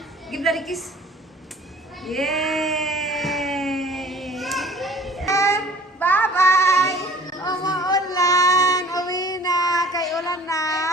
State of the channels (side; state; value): both; normal; correlation 0.48